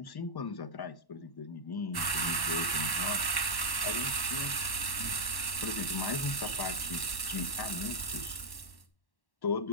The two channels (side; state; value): right; late; 1.1 ms